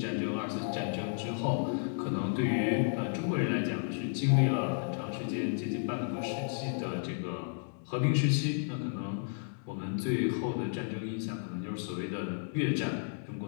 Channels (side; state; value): right; silent; digital silence